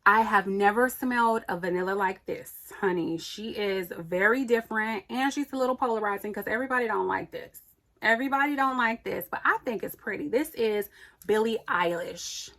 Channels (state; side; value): identical; both; correlation 1.00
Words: I have never smelled a vanilla like this, honey. She is very different and she's a little polarizing because everybody don't like this. Everybody don't like this, but I think it's pretty. This is Billie Eilish.